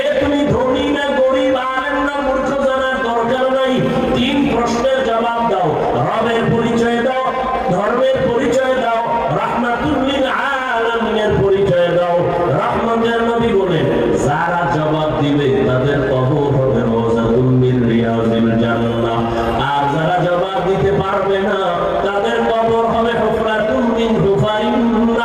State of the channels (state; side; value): identical; both; correlation 1.00